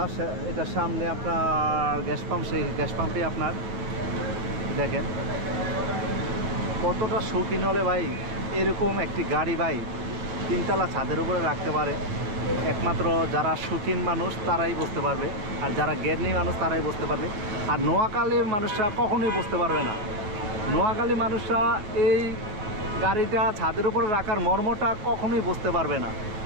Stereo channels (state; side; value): late; left; 9.5 ms